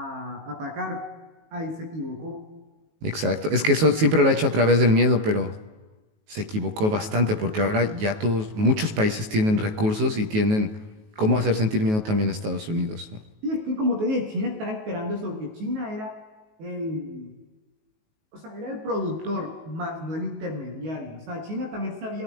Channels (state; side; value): late; left; 19 ms